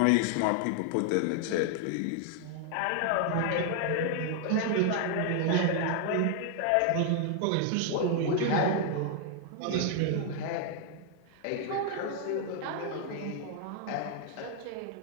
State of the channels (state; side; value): different; both; correlation 0.00